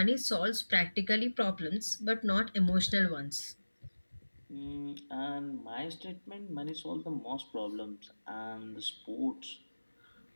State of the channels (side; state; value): both; inverted; correlation -1.00